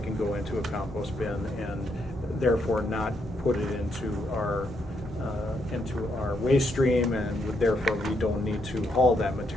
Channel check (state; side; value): normal; both; correlation 0.76